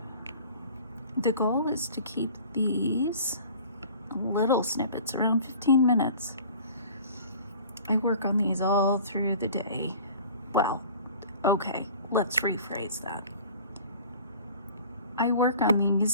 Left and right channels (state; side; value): inverted; both; correlation -0.45